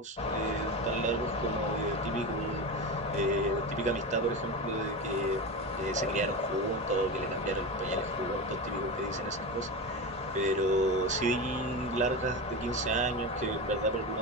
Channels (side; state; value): both; normal; correlation 0.22